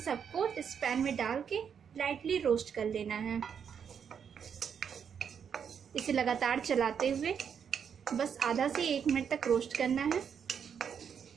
सबको इस पैन में डाल के लाइटली रोस्ट कर लेना है। इसे लगातार चलाते हुए बस आधा से 1 मिनट तक रोस्ट करना है।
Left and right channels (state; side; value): quieter; left; 7.5 dB